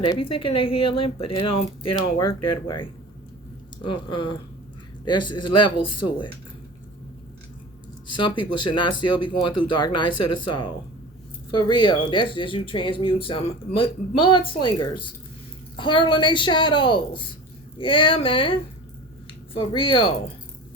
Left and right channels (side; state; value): both; normal; correlation 0.36